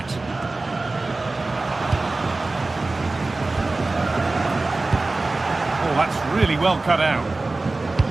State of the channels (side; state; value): left; quieter; 3.3 dB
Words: That's really well cut out.